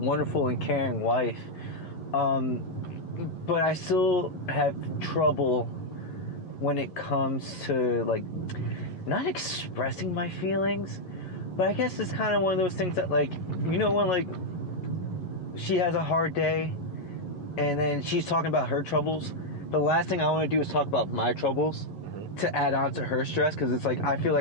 and caring wife. But I still have trouble when it comes to, like, not expressing my feelings, but I guess it's kind of one of those things that, like, when, like, she has a hard day and then she's talking about her troubles, the last thing I want to do is talk about my troubles to add on to her stress, because it's like I feel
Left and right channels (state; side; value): late; right; 11 ms